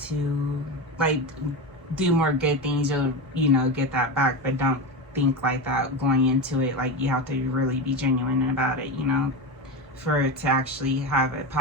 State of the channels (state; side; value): normal; both; correlation 0.19